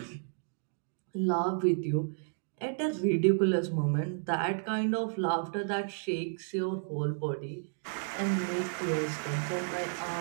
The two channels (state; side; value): silent; left; digital silence